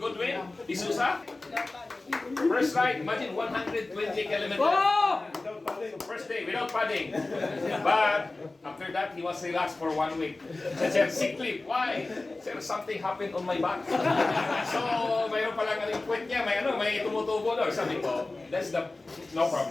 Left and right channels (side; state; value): right; quieter; 3.2 dB